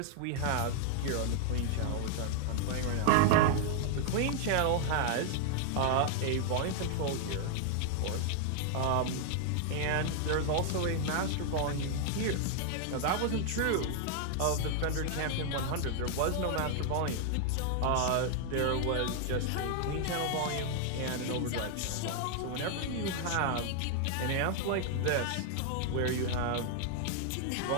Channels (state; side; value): different; both; correlation 0.00